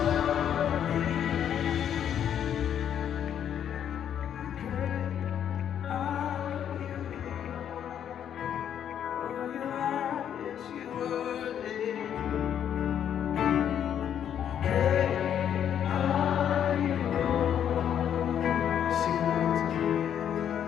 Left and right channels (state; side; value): quieter; right; 9.4 dB